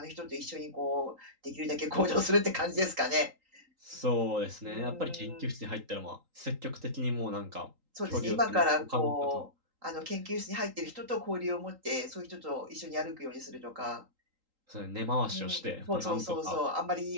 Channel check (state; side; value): late; left; 3.8 ms